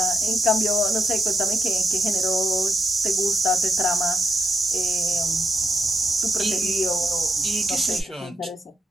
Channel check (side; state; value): both; normal; correlation 0.82